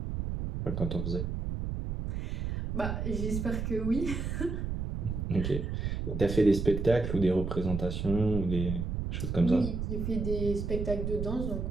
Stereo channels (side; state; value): right; noise; rumble, 3 dB below the sound